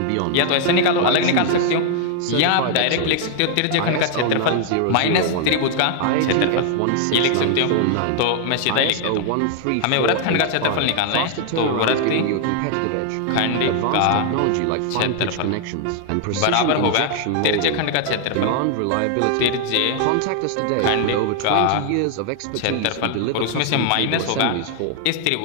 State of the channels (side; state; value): both; different; correlation 0.00